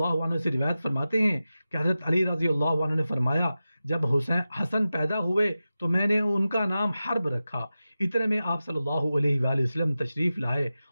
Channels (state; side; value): inverted; both; correlation -0.94